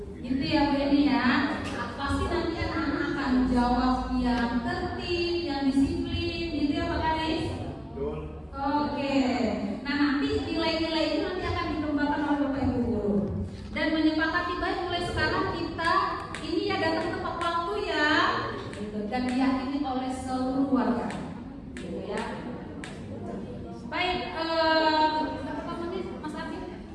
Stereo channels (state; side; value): identical; both; correlation 1.00